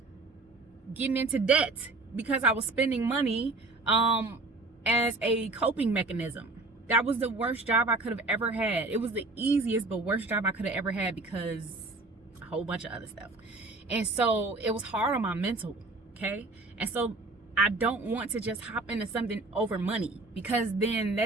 getting into debt because I was spending money as a coping mechanism. That was the worst job I could have ever had. It was the easiest but worst job I could have ever had because a whole bunch of other stuff. And so it was hard on my mental, okay? And so I don't want to just hop into something over money, because then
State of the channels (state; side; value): quieter; left; 3.3 dB